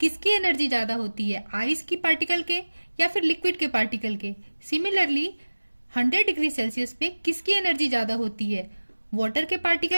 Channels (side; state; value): both; inverted; correlation -1.00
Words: एनर्जी ज़्यादा होती है? आइस की पार्टिकल के या फिर लिक्विड के पार्टिकल के? सिमिलरली 100 डिग्री सेल्सियस पे किसकी एनर्जी ज़्यादा होती है? वाटर के